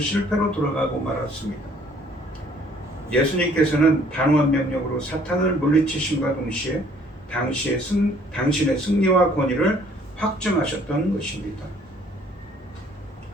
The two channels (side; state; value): both; normal; correlation 0.59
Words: 돌아가고 말았습니다. 예수님께서는 단호한 명령으로 사탄을 물리치심과 동시에 당신의 승리와 권위를 확증하셨던 것입니다.